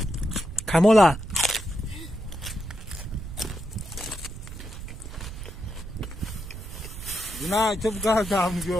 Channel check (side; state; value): right; noise; rumble, 11 dB below the sound